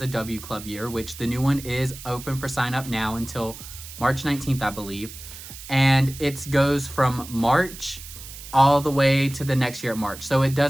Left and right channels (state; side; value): noise; right; hiss, 14 dB below the sound